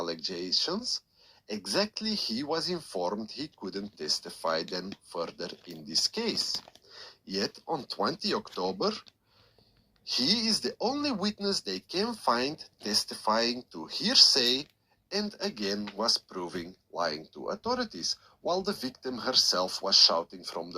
exactly he was informed he couldn't testify then further in this case. Yet on 20 October, he is the only witness they can find testifying to hearsay and again was proving lying to authorities, while the victim herself was shouting from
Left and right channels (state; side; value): identical; both; correlation 1.00